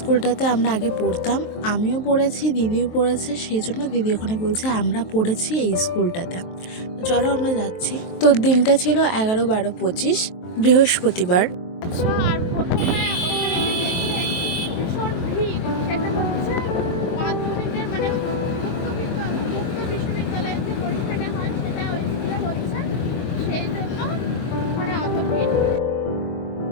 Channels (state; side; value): late; right; 23 ms